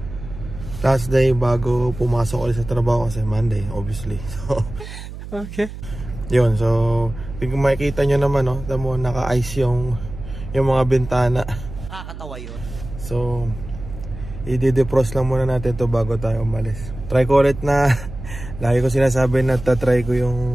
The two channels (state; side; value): noise; right; hum, 11 dB below the sound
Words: last day bago pumasok ulit sa trabaho kasi Monday, obviously. So, okay. Yun, so, kung makikita nyo naman, no? Tamo, naka-ice yung mga bintana. Nakakatawa yun. So, i-defrost lang muna natin to bago tayo umalis. Try ko ulit na, lagi ko sinasabi na tatry ko yung